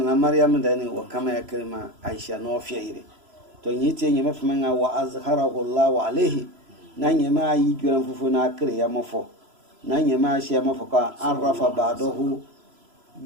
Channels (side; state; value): left; late; 3.0 ms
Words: Maryam da ne wa kama ya kirma Aisha no fiire to yiti nyeme fama wa azharahu Allah alaihi na nyema yi gira fufu na kire ya mafo na nyema shi ya mafo ka arafa ba'dahu